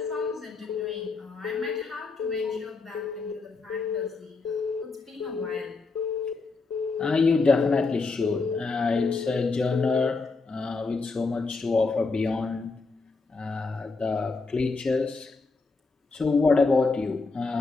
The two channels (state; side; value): quieter; right; 4.0 dB